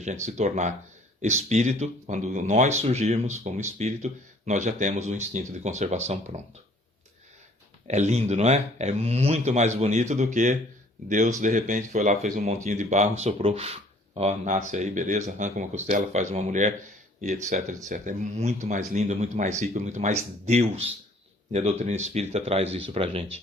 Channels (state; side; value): normal; both; correlation 0.56